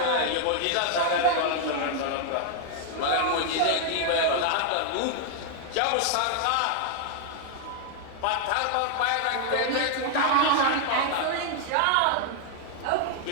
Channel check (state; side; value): different; both; correlation 0.00